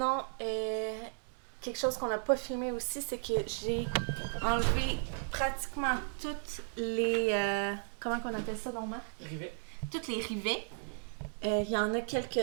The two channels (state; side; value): silent; left; 55 dB below the other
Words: quelque chose qu'on n'a pas filmé aussi, c'est que j'ai enlevé pratiquement toutes les... comment qu'on appelle ça, donc, Marc? Rivet. Toutes les rivets. Il y en a